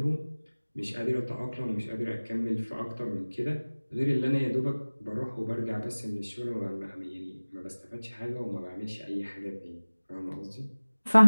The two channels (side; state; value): both; inverted; correlation -1.00